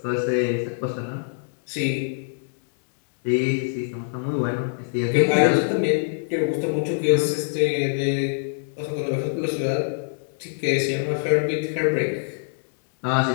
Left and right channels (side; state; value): right; silent; 63 dB below the other